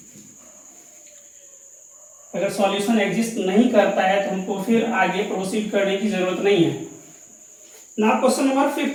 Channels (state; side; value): identical; both; correlation 1.00